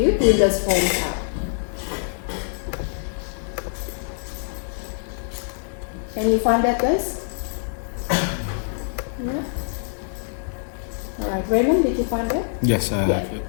you Windows Form app. Can you find that, guys? Yeah. All right, Raymond, did you find that? Yes, I have it.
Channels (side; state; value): right; silent; 59 dB below the other